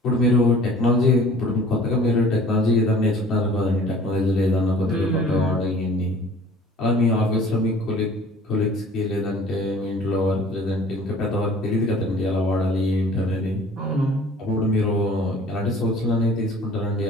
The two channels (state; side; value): normal; both; correlation 0.48